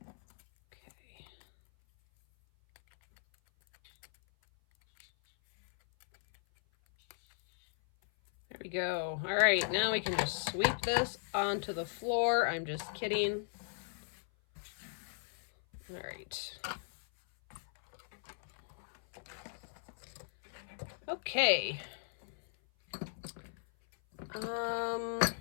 Okay. There we go. All right, now we can just sweep this onto the floor. I'm just kidding. All right. Okay.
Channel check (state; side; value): silent; right; 53 dB below the other